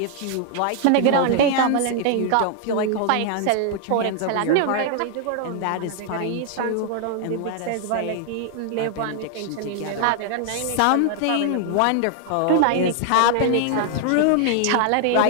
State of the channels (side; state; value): both; different; correlation 0.00